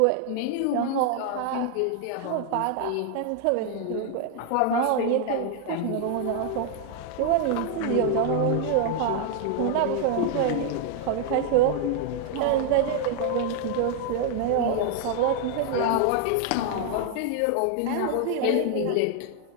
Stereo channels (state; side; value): different; both; correlation 0.00